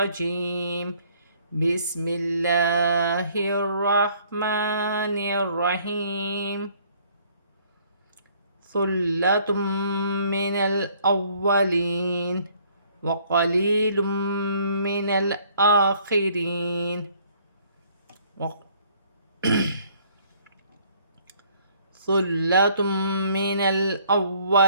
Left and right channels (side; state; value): both; inverted; correlation -0.61